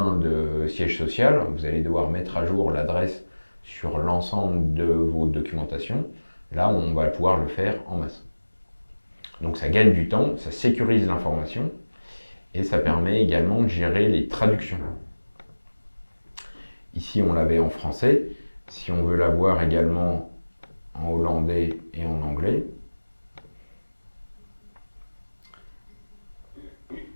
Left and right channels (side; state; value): both; inverted; correlation -1.00